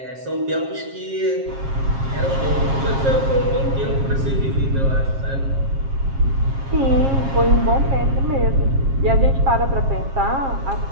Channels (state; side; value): late; left; 7.4 ms